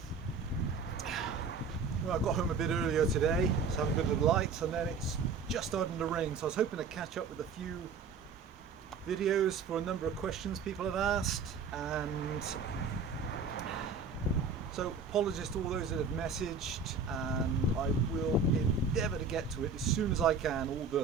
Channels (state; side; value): quieter; left; 5.0 dB